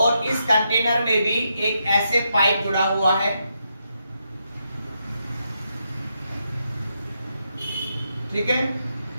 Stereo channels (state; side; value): inverted; both; correlation -0.82